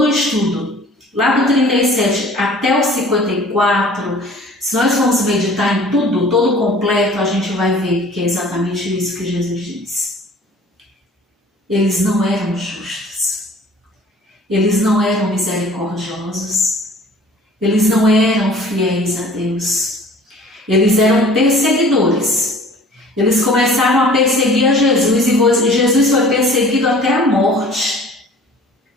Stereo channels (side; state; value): both; normal; correlation 0.49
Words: o estudo, lá do 37 até o 54, se nós formos meditar em tudo, todo completo, a gente vai ver que é exatamente isso que Jesus diz. Eles não eram justos. Eles não eram misericordiosos. Eles não eram fiéis a Deus. Eles eram perseguidores. Eles começaram a perseguir a Jesus e Jesus foi perseguido até a morte.